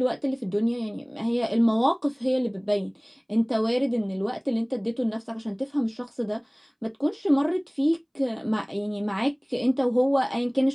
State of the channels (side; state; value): both; identical; correlation 1.00